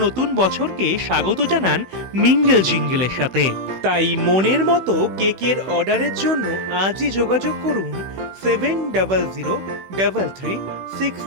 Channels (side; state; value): left; late; 16 ms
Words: বছরকে স্বাগত জানান মিঙ্গেল জিঙ্গেলের সাথে। তাই মনের মতো কেকের অর্ডারের জন্য আজই যোগাযোগ করুন